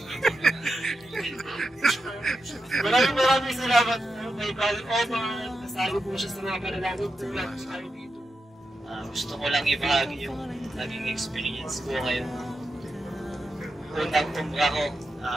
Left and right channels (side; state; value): both; normal; correlation 0.88